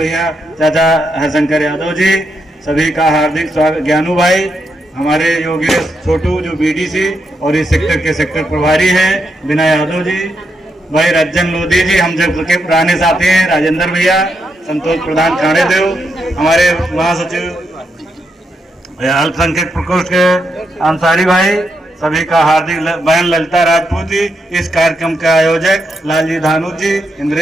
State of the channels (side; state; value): both; normal; correlation 0.82